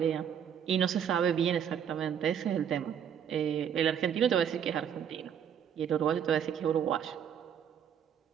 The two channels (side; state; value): left; quieter; 8.6 dB